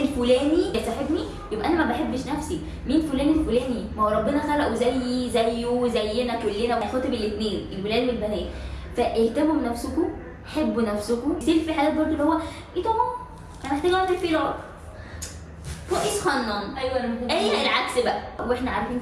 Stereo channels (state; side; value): identical; both; correlation 1.00